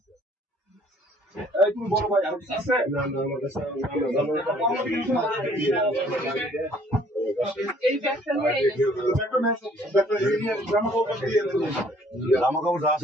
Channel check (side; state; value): both; normal; correlation 0.59